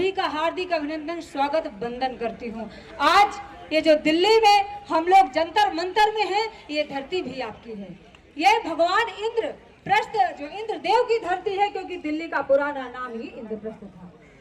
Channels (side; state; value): both; identical; correlation 1.00